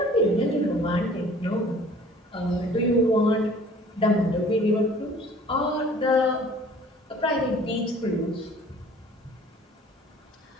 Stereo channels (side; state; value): both; normal; correlation 0.51